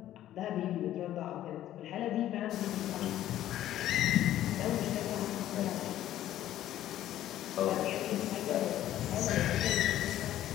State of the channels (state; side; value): quieter; right; 12.8 dB